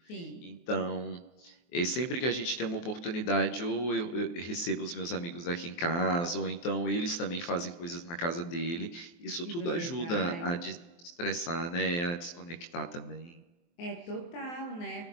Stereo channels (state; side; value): late; right; 23 ms